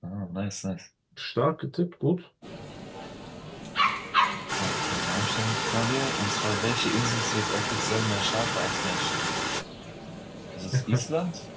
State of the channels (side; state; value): both; identical; correlation 1.00